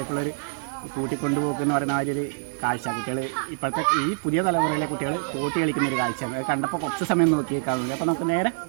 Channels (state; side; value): silent; left; digital silence